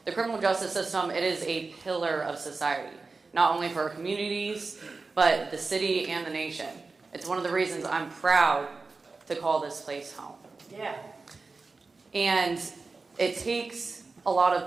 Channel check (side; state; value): left; quieter; 4.0 dB